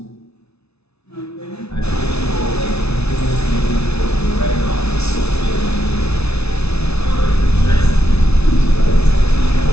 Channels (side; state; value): right; late; 0.80 ms